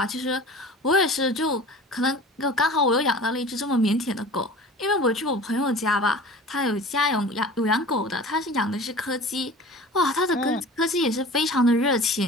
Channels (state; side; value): normal; both; correlation 0.40